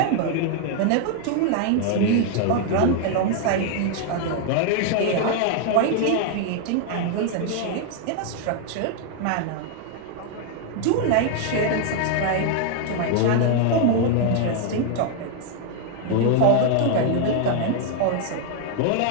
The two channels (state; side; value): different; both; correlation 0.00